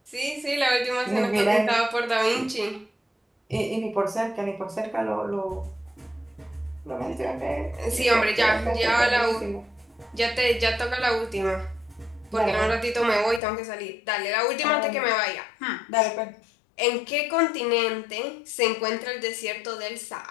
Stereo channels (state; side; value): drops out; right; at 13.4 s